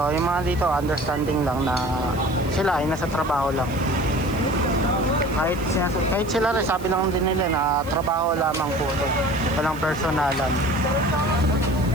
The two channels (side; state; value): right; noise; hiss, 21 dB below the sound